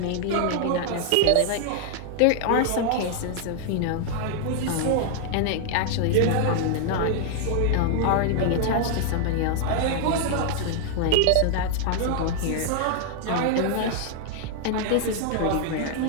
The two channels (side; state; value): both; different; correlation 0.00